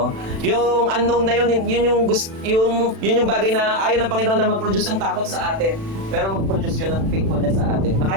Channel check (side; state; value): left; late; 36 ms